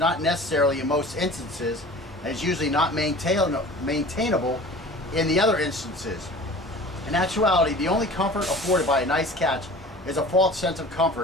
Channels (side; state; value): both; normal; correlation 0.42